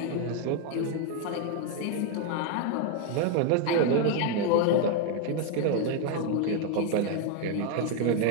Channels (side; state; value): both; different; correlation 0.01